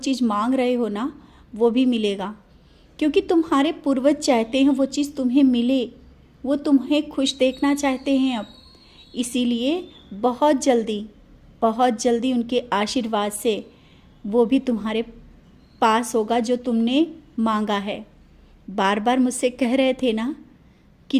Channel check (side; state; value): both; identical; correlation 1.00